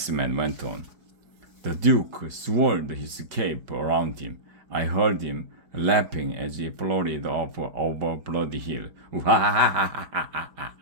went on. The Duke swirled his cape around him. I heard him laughing as he floated off over Bloody Hill.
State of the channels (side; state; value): left; late; 5.1 ms